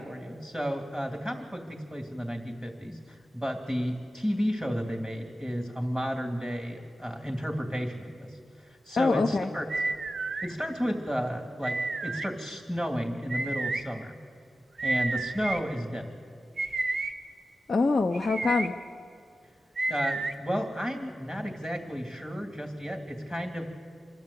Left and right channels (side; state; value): both; normal; correlation 0.93